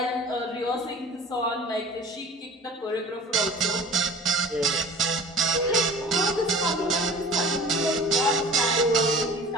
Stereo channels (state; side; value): normal; both; correlation 0.43